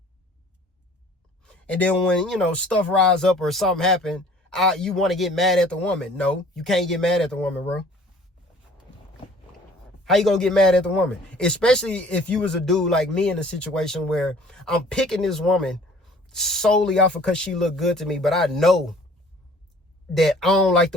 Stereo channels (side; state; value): both; normal; correlation 0.52